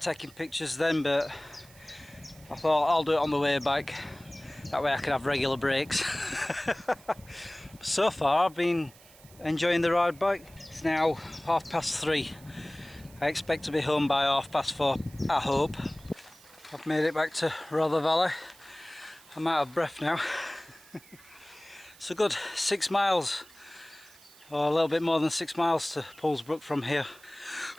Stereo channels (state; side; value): noise; right; hiss, 24 dB below the sound